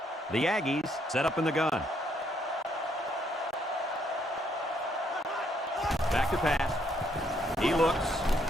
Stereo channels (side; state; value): both; normal; correlation 0.71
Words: The Aggies set up in the gun. Back to pass. He looks.